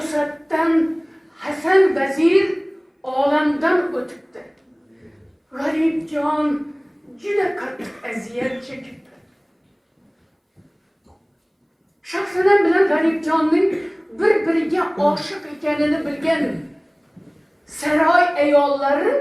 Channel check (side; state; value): both; identical; correlation 1.00